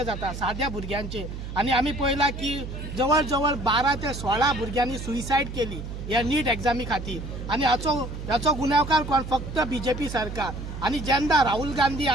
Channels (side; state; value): right; noise; hum, 8 dB below the sound